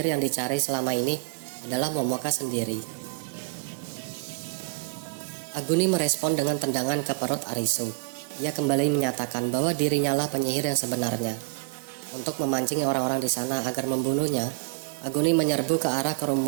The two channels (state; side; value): quieter; left; 34.6 dB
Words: yang dicari selama ini adalah Momoka sendiri. Aguni merespon dengan tendangan ke perut Arisu. Ia kembali menyatakan bahwa dirinya lah penyihir yang sebenarnya. Untuk memancing orang-orang di sana agar membunuhnya, Aguni menyerbu ke arah